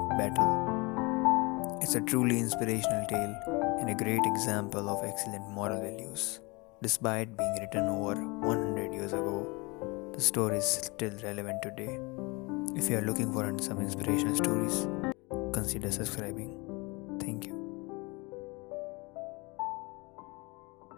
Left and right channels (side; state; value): right; quieter; 26.6 dB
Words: battle. It's a truly inspirational tale and a great example of excellent moral values. Despite being written over 100 years ago, the story is still relevant today. If you are looking for some inspirational stories, consider subscribing. Thank you.